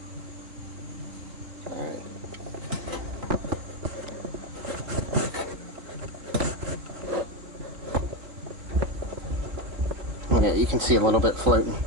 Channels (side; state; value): left; late; 4.0 ms